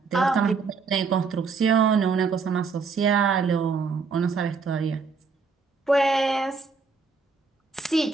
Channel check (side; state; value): left; quieter; 4.9 dB